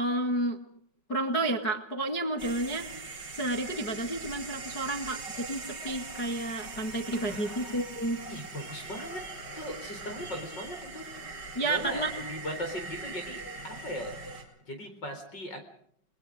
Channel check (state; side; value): late; right; 5.3 ms